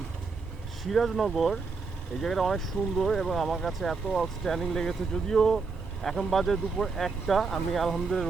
সিরাজনগর। এই জায়গাটা অনেক সুন্দর এবং আমার কাছে এত আউটস্ট্যান্ডিং লেগেছে। যদিও এখন বাজে দুপুর একটা, আমি আলহামদুলিল্লাহ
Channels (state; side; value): quieter; left; 4.5 dB